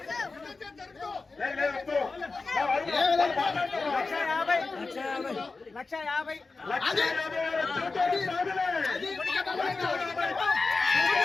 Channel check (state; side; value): quieter; right; 3.9 dB